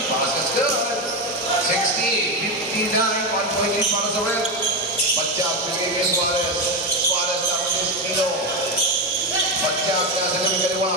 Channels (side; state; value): both; normal; correlation 0.12